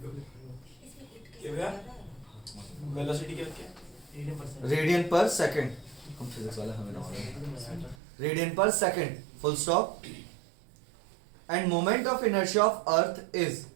क्या भैया? वेलोसिटी क्या क्या? रेडियन पर सेकंड हम फिजिक्स वाले हमें ना रेडियन पर second full stop end moment of inertia of earth is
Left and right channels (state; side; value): drops out; left; at 8.0 s